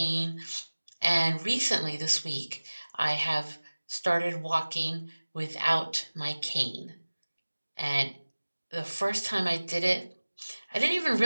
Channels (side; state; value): both; inverted; correlation -1.00